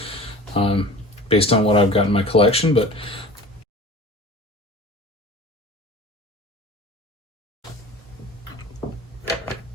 based on what I've got in my collection. But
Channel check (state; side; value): normal; both; correlation 0.39